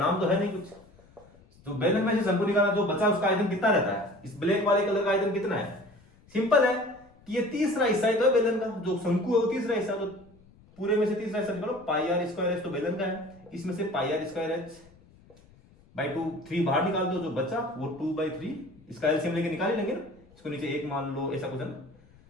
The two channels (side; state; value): left; noise; rumble, 27 dB below the sound